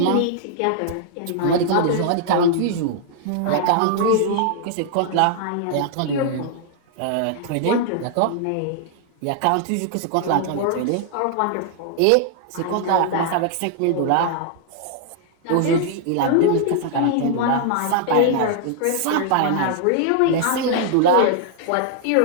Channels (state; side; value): different; both; correlation -0.01